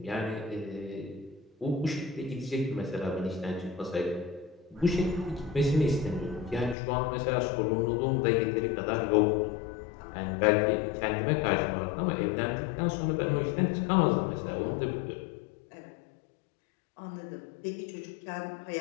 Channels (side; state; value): right; drops out; at 6.8 s